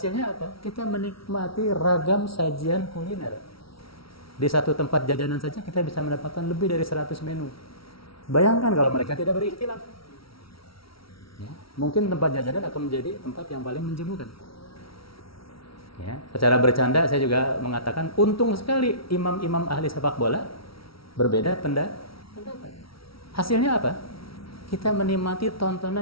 apa? Kita menikmati ragam sajian kuliner. Di satu tempat jajanan saja kita bisa mendapatkan lebih dari 100 menu. Bayangkan kalau mereka tidak berikhtilaf, ya. Mungkin tempat jajanan akan menjadi tempat yang paling menjemukan. Ya, secara bercanda saya juga mengatakan untung sekali imam-imam ahli sepak bola berbeda pendapat. Hasilnya apa? Kita menikmati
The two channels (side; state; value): right; late; 0.75 ms